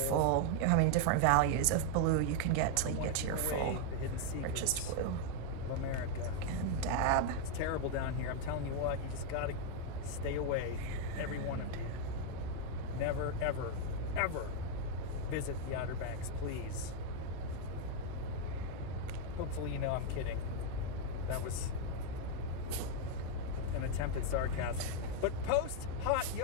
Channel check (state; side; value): different; both; correlation 0.00